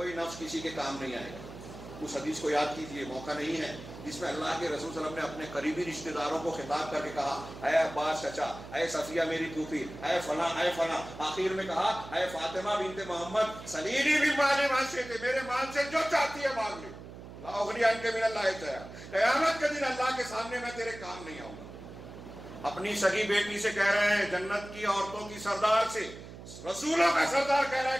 نفس کسی کے کام نہیں آئے گا۔ اس حدیث کو یاد کیجئے، موقع نہیں ہے، جس میں اللہ کے رسول صلی اللہ علیہ وسلم نے اپنے قریبی رشتہ داروں کو خطاب کر کے کہا، اے عباس چچا، اے صفیہ میری پھوپھی، اے فلاں اے فلاں، آخر میں کہا اے فاطمہ بنت محمد سلیلی من مال ما شئت، میرے مال سے جو چاہتی ہے مانگ لے، لا اغنی عنک من اللہ شیئا، قیامت کے دن اللہ کے سامنے میں تیرے کام نہیں آؤں گا۔ اپنی سگی بیٹی سے کہہ رہے ہیں، جنت کی عورتوں کی سردار سے، رسولوں کا سردار کہہ رہا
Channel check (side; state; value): right; noise; hum, 14 dB below the sound